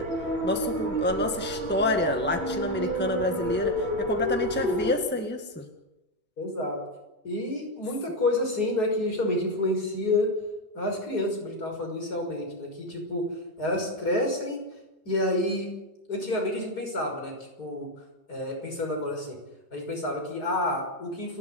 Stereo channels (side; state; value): both; normal; correlation 0.07